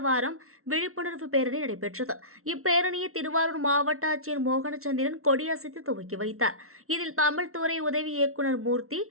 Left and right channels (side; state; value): left; late; 0.63 ms